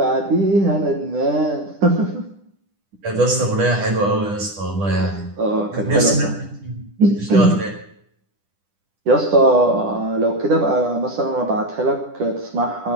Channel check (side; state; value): left; late; 10 ms